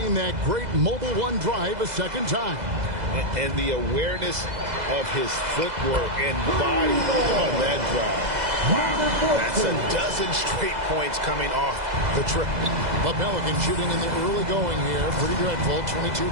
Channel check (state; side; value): late; left; 2.0 ms